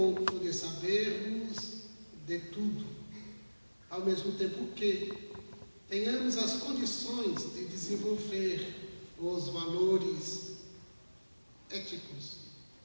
de sabermos de tudo, ao mesmo tempo que tenhamos as condições de desenvolver os valores éticos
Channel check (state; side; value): inverted; both; correlation -1.00